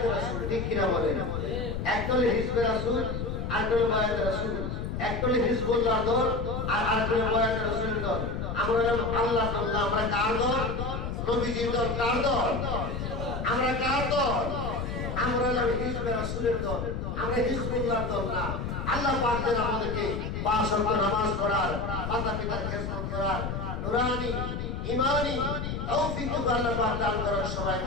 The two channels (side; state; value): left; noise; rumble, 4 dB below the sound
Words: রাসূল, ঠিক কিনা বলেন? একদল হিজবে রাসূল, আরেকদল বায়াত রাসূল, একদল হিজবুল্লাহর দল আর আরেকদল বায়াত রাসূলের দল। আমরা আল্লাহর দল, আমরা কার দল? নবীজির দল। কার দল? আমরা কার দল? আমরা হলাম হিজবে রাসূলের দল, আমরা হিজবুল্লাহর দল না। আল্লাহ পাক যেন আমাদেরকে ৫ ওয়াক্ত নামাজ পড়ার, মাতা পিতার খেদমত করার নুরানি ঈমানি তৌফিক আল্লাহ পাক দান করেন। সবাই